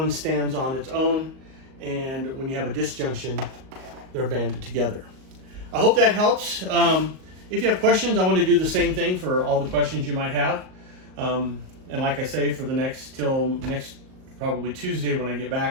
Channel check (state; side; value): late; left; 38 ms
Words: stands on its own, and when you have a disjunction, they're banded together. I hope that helps. If you have questions, I want to do the same thing for all the questions you might have. And like I say, for the till next probably Tuesday when I get